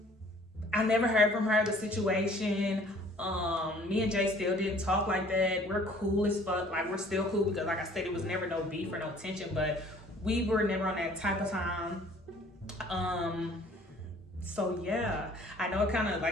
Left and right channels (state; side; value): normal; both; correlation 0.55